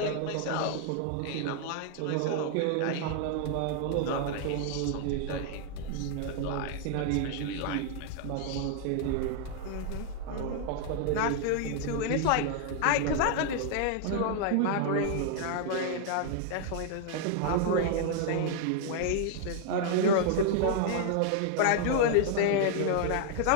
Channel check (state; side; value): different; both; correlation 0.00